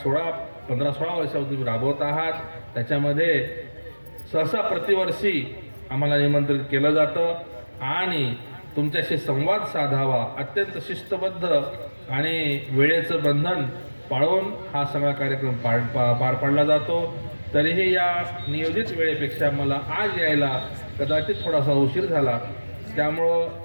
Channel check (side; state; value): both; inverted; correlation -1.00